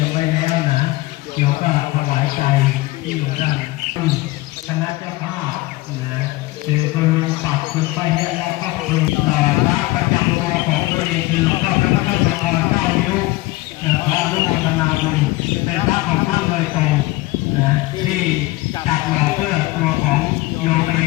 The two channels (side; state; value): right; quieter; 19.8 dB